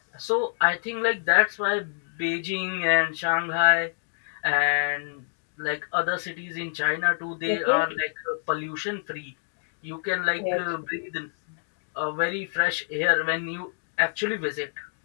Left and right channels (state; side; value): silent; right; digital silence